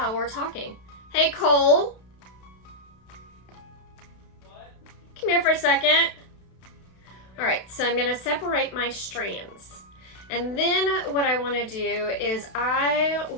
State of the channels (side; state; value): right; late; 31 ms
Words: we're talking. Hey, Cole. What? Come here for a second. All right, so I'm going to separate my strands. And then what I want to do is I